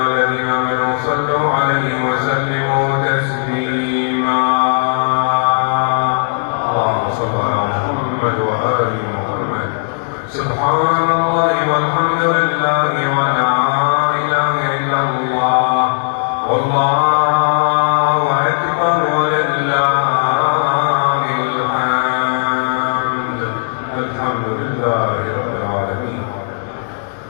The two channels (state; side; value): silent; right; digital silence